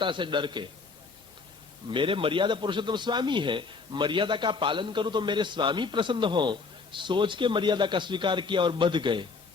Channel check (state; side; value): quieter; right; 4.5 dB